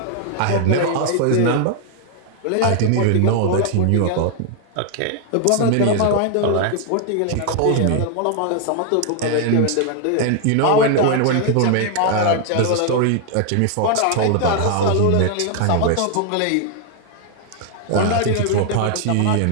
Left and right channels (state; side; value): different; both; correlation 0.00